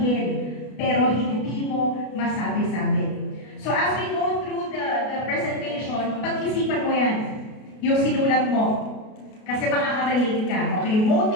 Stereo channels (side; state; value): right; late; 33 ms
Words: pero hindi mo masabi-sabi. So as we go through the presentation, pag-isipan mo yan, yung sinulat mo. Kasi makaka-relate ka. Okay,